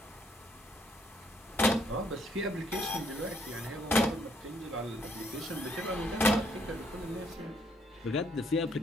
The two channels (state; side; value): normal; both; correlation 0.69